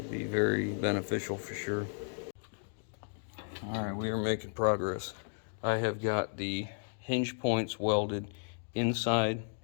very beneficial for sure. All right, we are making progress. I have got the hinge points welded inside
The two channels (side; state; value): right; silent; digital silence